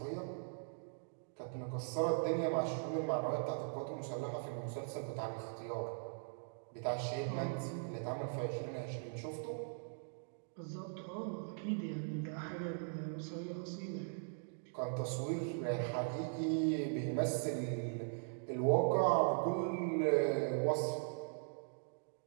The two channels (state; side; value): silent; left; digital silence